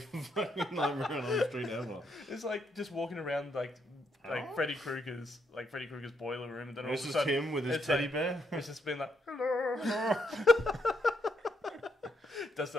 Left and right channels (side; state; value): both; normal; correlation 0.76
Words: fucking Nightmare on Elm Street ever. It's like just walking around like Freddy Krueger's boiler room, and then all of a sudden, this is him with his teddy bear. It's just been like, hello. Does